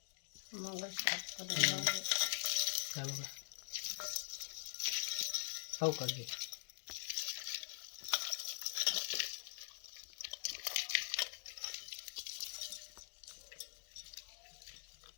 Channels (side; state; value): right; silent; digital silence